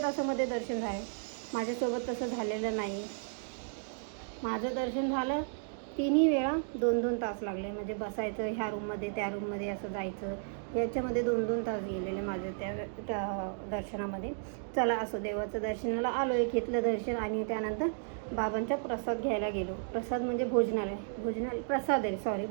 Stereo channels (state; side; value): silent; left; digital silence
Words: तासामध्ये दर्शन झालं? माझ्यासोबत तसं झालेलं नाही. माझं दर्शन झालं 3ही वेळा 2-2 तास लागले. म्हणजे बसायचं ह्या रूममध्ये त्या रूममध्ये असं जायचं, याच्यामध्ये 2-2 तास गेलेले माझे त्या दर्शनामध्ये. चला असो, देवाचं दर्शनाला आलो आहे, घेतलं दर्शन आणि त्यानंतर बाबांचा प्रसाद घ्यायला गेलो. प्रसाद म्हणजे भोजनालय